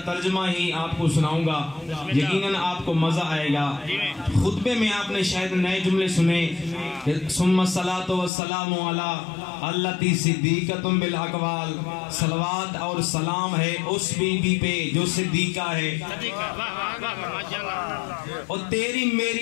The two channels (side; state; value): right; drops out; at 8.3 s